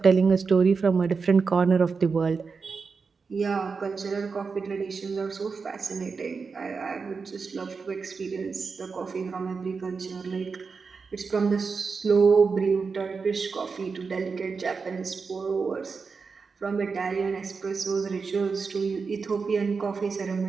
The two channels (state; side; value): quieter; left; 5.0 dB